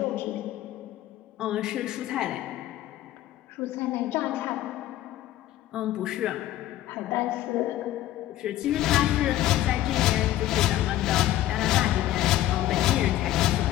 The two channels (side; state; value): right; quieter; 14.0 dB